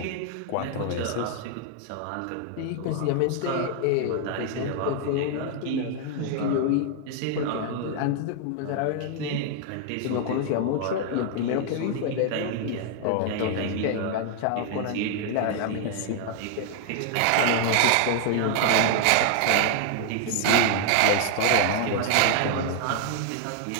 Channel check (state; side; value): different; both; correlation 0.00